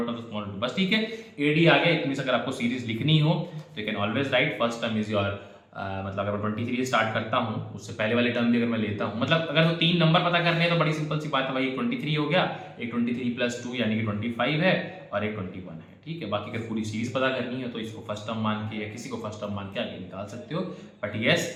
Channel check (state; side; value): identical; both; correlation 1.00